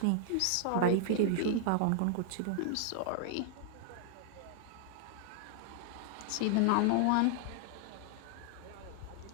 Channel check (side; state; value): both; different; correlation 0.00